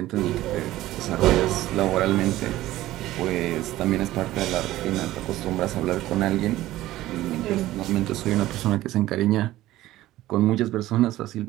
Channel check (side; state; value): left; quieter; 15.6 dB